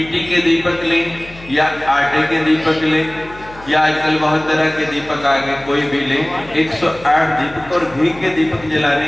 के दीपक लें या आटे के दीपक लें या आजकल बहुत तरह के दीपक आ गए, कोई भी लें। 108 दीपक और घी के दीपक जलाने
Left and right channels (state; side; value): noise; left; hum, 20 dB below the sound